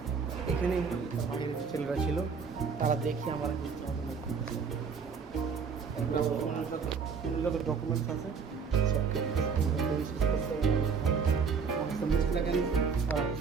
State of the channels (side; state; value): left; quieter; 5.8 dB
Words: এখানে তার বাড়ির ছেলেরা ছিল, তারা দেখি আমার যত ডকুমেন্টস আছে